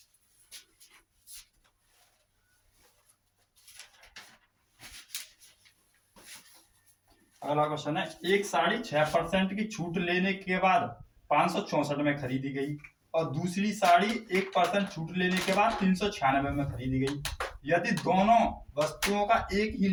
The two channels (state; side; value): identical; both; correlation 1.00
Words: अगला क्वेश्चन है, एक साड़ी 6% की छूट लेने के बाद 564 में खरीदी गई और दूसरी साड़ी 1% छूट लेने के बाद 396 में खरीदी गई। यदि दोनों वस्तुओं का एक ही